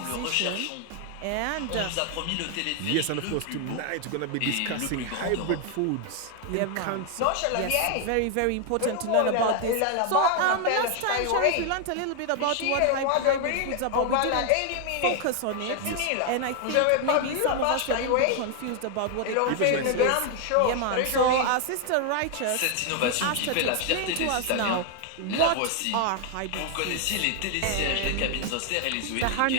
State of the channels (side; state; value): both; different; correlation 0.00